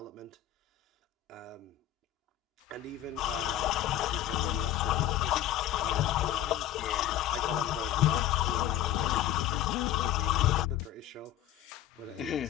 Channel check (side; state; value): right; quieter; 12.4 dB